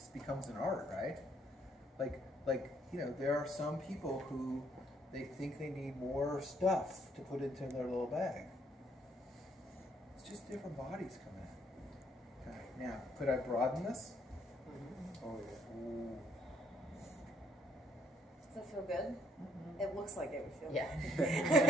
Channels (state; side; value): normal; both; correlation 0.64